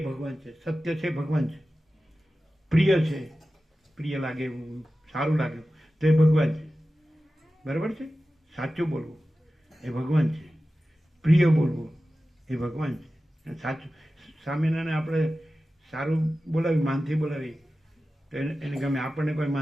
ભગવાન છે. સત્ય છે ભગવાન છે. પ્રિય છે, પ્રિય લાગે એવું, સારું લાગે તો એ ભગવાન છે. બરાબર છે? સાચું બોલવું એ ભગવાન છે, પ્રિય બોલવું એ ભગવાન છે. સાચું સામેનાને આપણે સારું બોલાવી, માનથી બોલાવી તો એને ગમે. આપણને કોઈ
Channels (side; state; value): both; normal; correlation 0.94